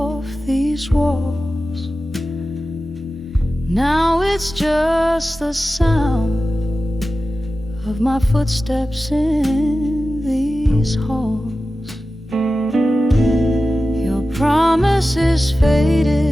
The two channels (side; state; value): both; normal; correlation 0.94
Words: these walls. Now it's just the sound of my footsteps in these halls. Your promise is